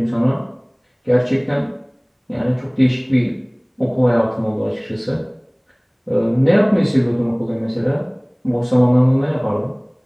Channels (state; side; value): identical; both; correlation 1.00